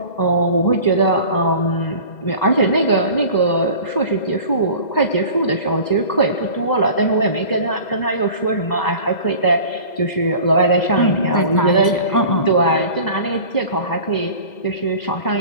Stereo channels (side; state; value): right; late; 2.0 ms